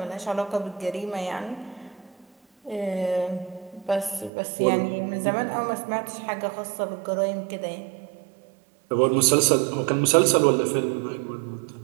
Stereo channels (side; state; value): left; drops out; at 4.3 s